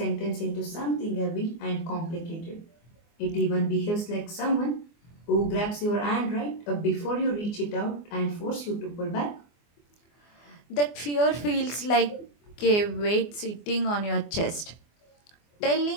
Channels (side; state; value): right; late; 24 ms